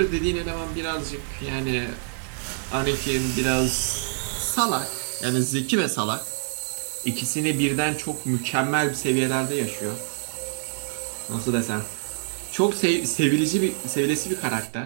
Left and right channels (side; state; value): left; silent; digital silence